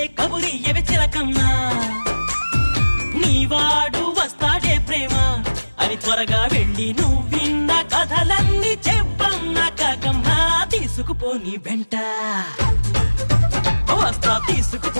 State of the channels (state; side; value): inverted; both; correlation -1.00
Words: కబురియవే చిలకమ్మా. నీవాడు వస్తాడే ప్రేమ అని త్వరగా వెళ్ళి నువ్విన్న కథలన్నీ చెప్పమ్మా కాకమ్మా. తీసుకుపోని వెంట వస్తా,